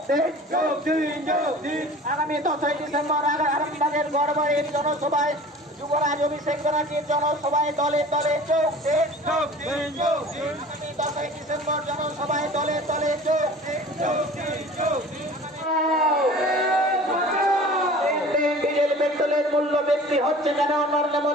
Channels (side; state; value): both; normal; correlation 0.43